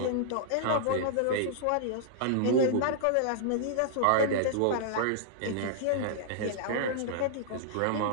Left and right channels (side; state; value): both; different; correlation -0.01